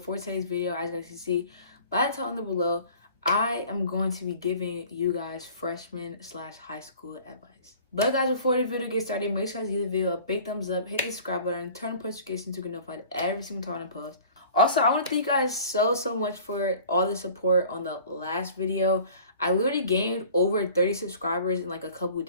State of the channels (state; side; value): inverted; both; correlation -0.47